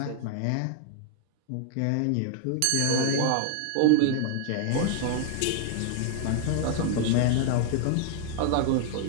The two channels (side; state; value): both; different; correlation 0.00